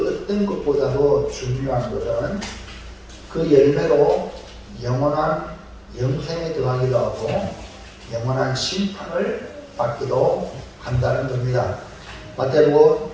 어떤 것보다도 중요한 것은 그 열매로 영원한 영생에 들어가기도 하고 영원한 심판을 받기도 한다는 겁니다. 마태복음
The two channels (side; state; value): both; identical; correlation 1.00